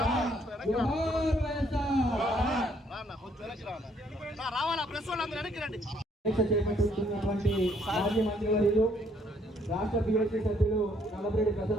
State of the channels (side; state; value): both; normal; correlation 0.67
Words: जोहार वैसा। చేపట్టుతున్నటువంటి మాజీ మంత్రివర్యులు రాష్ట్ర బీఎస్సీ సభ్యులు నల్లపరెడ్డి